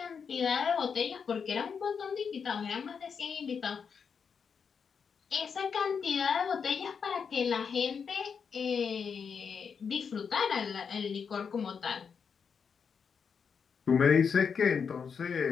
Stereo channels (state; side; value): quieter; right; 6.3 dB